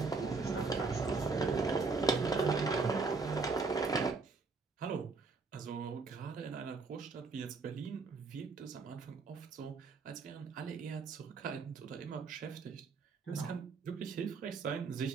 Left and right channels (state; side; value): quieter; left; 4.3 dB